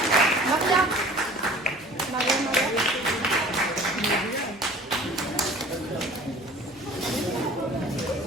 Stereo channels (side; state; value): both; normal; correlation 0.47